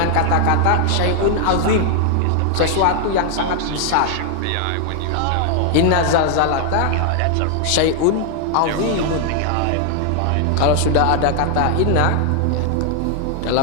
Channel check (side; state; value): both; different; correlation 0.00